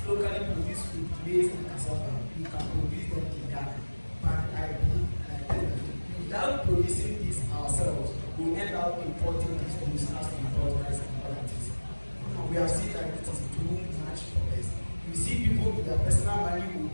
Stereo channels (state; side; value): inverted; both; correlation -1.00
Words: locally produced food, maize and cassava, we can produce them in Ghana. But I believe without producing this ourselves, we end up importing these goods as we import rice and other things. We have seen that it is too much for us. You see people with their personal money will